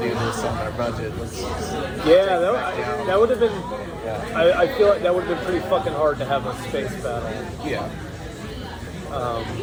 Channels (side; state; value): both; identical; correlation 1.00